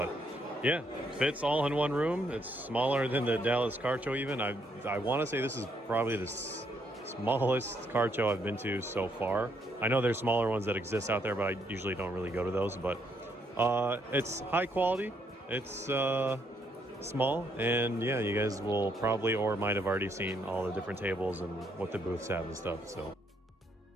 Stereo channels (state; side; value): normal; both; correlation 0.73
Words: yeah, fits all in one room. It's smaller than the Dallas card show even. I want to say this is probably the smallest card show I've been to so far. I know there's smaller ones that exist out there, but I usually don't really go to those. But it's high quality. It's small, and yeah, you guys will probably or might have already seen all the different tables and what the booths have and stuff. So